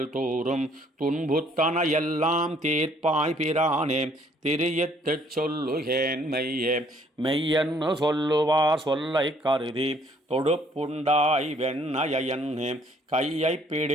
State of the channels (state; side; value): normal; both; correlation 0.62